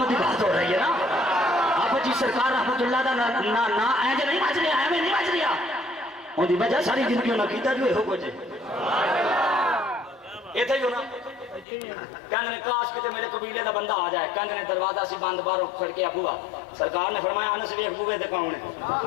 کی بات ہو رہی ہے نا آپ جی سرکار رحمت اللہ دا نا اینج نہیں بچ رہا ایویں نہیں بچ رہا ان دی وجہ ساری زندگی انہاں کیتا جو ہو کچھ ایتھے ہی ہونا کہنے کاش کتے میرے قبیلے دا بندہ آ جائے کہنے دروازہ سی بند باہروں کھڑ کے ابوا سرکار نے فرمایا انس ویکھ بوے تے کون ہے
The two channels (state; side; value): drops out; right; at 11.7 s